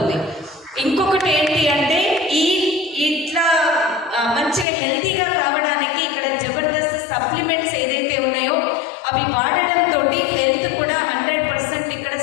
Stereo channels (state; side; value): drops out; right; at 4.7 s